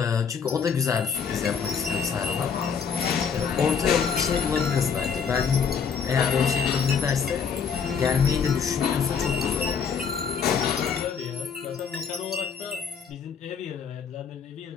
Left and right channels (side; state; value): right; quieter; 6.5 dB